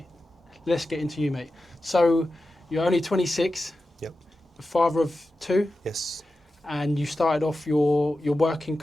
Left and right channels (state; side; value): normal; both; correlation 0.92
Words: let's get into you, mate. So you're only 26. Yep. Father of 2. Yes. And you started off your working